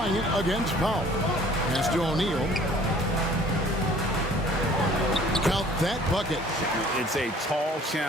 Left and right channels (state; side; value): normal; both; correlation 0.53